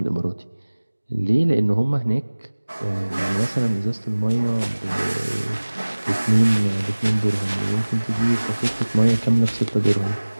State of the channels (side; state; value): both; inverted; correlation -1.00